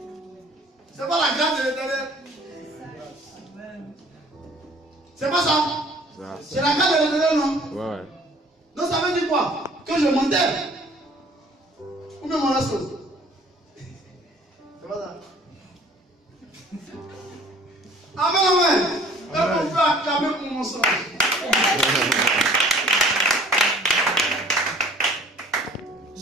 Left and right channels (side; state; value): both; normal; correlation 0.52